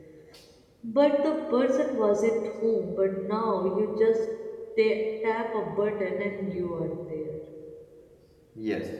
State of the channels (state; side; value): identical; both; correlation 1.00